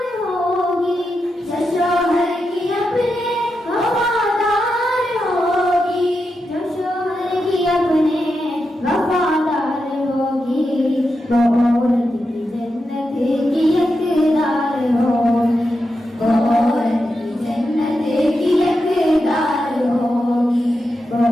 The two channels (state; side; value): normal; both; correlation 0.87